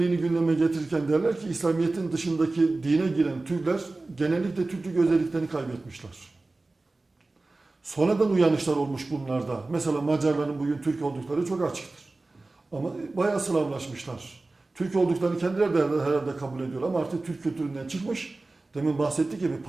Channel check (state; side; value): quieter; left; 3.2 dB